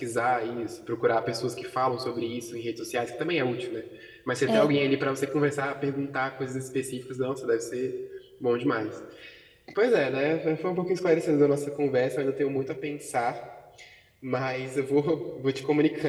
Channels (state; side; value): identical; both; correlation 1.00